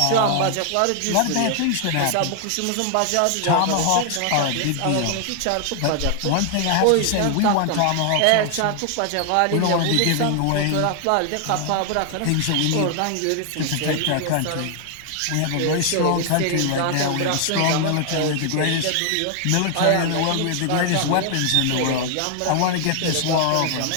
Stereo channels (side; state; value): both; different; correlation 0.00